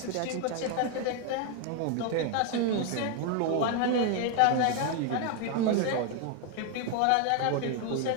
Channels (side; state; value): both; different; correlation 0.01